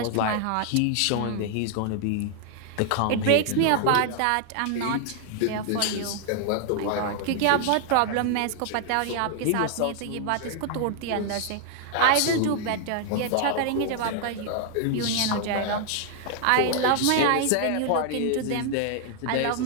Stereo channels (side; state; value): both; different; correlation 0.00